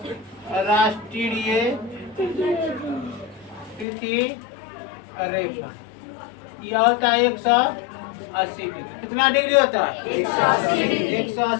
तिथि रेखा, यह होता है 180 डिग्री। कितना डिग्री होता है?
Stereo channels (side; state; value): right; drops out; at 3.9 s